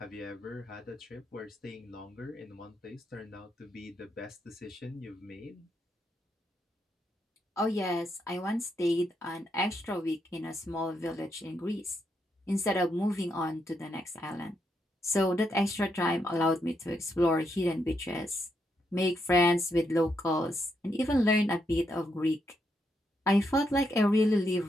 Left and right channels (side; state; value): both; normal; correlation 0.79